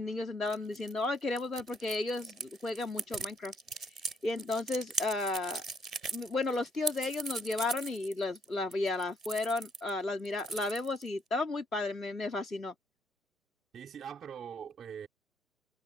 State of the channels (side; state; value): both; normal; correlation 0.70